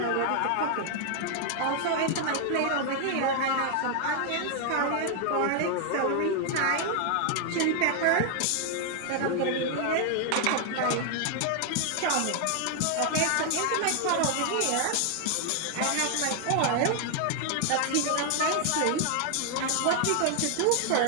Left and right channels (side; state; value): both; different; correlation 0.00